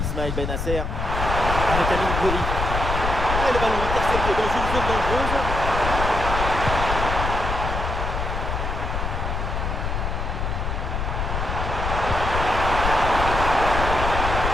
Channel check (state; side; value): noise; left; rumble, 2 dB below the sound